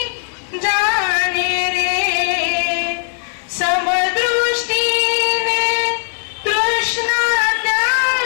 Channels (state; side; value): silent; right; 68 dB below the other